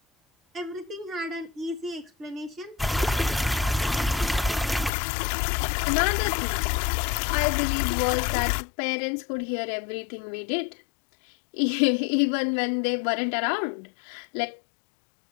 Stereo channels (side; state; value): right; drops out; at 4.9 s